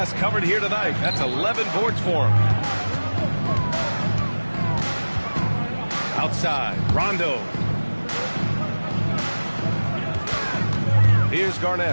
covered here tonight. That's 11 boards for him. Outside, Rondo. Here's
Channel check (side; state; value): both; inverted; correlation -1.00